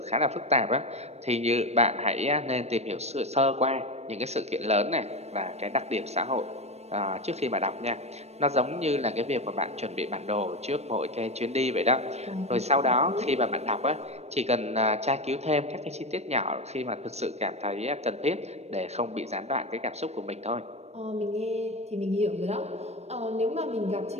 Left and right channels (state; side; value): late; left; 0.31 ms